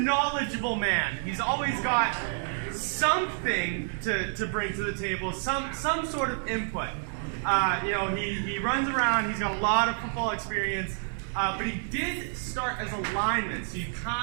man. He's always got something to bring to the table, some sort of input. He runs around, he's got a lot of football experience, but he did start as a lineman, so you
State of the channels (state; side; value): silent; left; 56 dB below the other